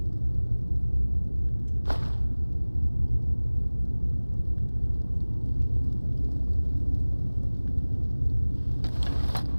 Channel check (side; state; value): both; inverted; correlation -1.00